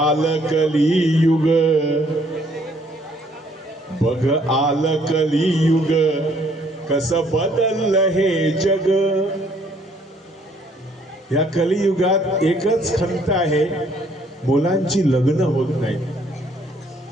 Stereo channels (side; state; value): both; normal; correlation 0.64